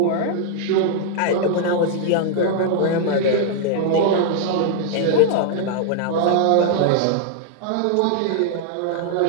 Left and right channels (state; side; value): different; both; correlation 0.00